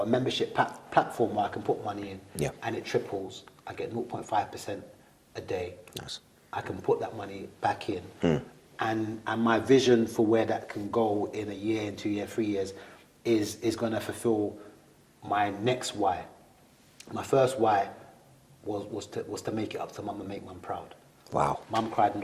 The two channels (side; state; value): both; identical; correlation 1.00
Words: a membership platform where I can put money in, Yeah. and it triples. I get 0.5% a day. Nice. I can put that money back in. And my vision for where that can go in a year, in 2 years, 3 years, is going to fulfill my next why. My first why was to make it up to mum and make mum proud. Wow. Mum cried in